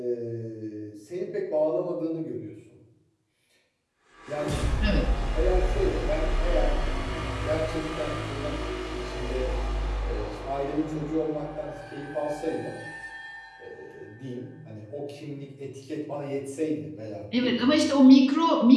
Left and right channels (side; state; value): both; identical; correlation 1.00